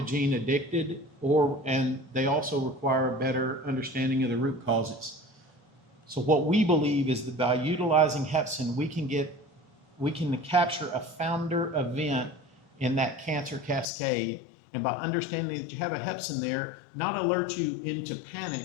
addicted, and they also require a better understanding of the root causes. So what we believe is that by utilizing Hepsin, we can capture a founder event in that cancer cascade, and by understanding that you have a Hepsin there, not alert you into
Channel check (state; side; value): drops out; right; at 13.9 s